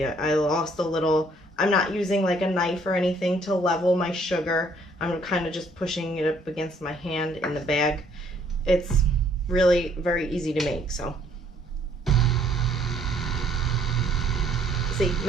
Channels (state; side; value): normal; both; correlation 0.63